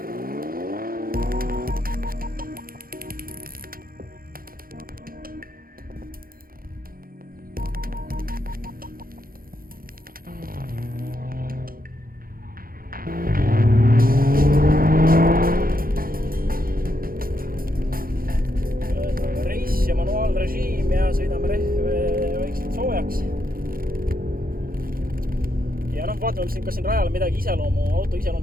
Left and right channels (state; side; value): late; left; 0.42 ms